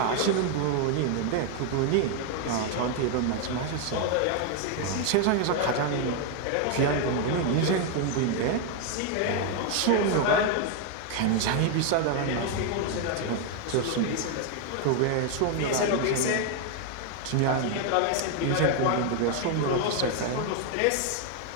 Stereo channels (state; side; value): different; both; correlation 0.01